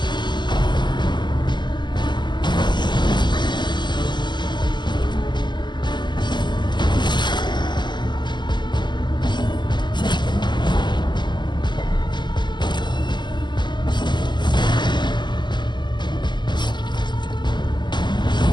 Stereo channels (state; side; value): late; right; 0.21 ms